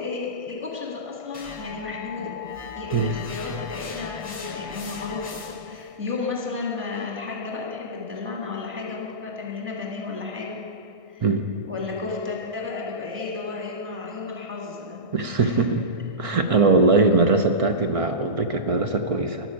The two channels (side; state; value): left; late; 1.6 ms